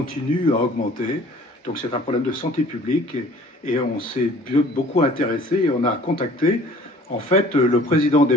à augmenter. Donc c'est un problème de santé publique et on s'est beaucoup intéressé et on a contacté en fait le président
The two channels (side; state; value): both; normal; correlation 0.51